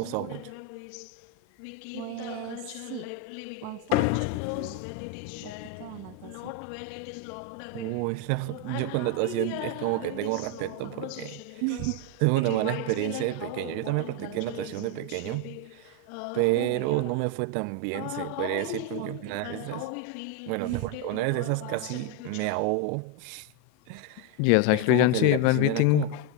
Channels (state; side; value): different; both; correlation 0.02